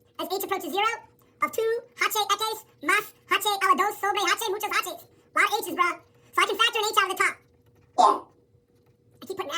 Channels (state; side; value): identical; both; correlation 1.00